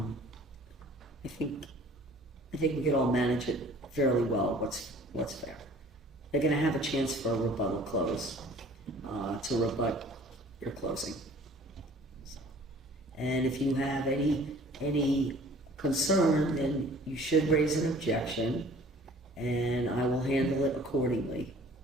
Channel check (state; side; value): normal; both; correlation 0.50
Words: think we could all manage it fairly well. What's fair? They're going to have a chance for a rebuttal close to rebut your closing. And if you have any concern, then you should raise an objection, and I will handle it accordingly.